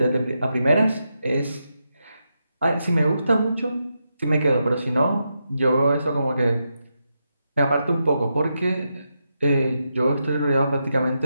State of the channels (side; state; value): both; inverted; correlation -0.85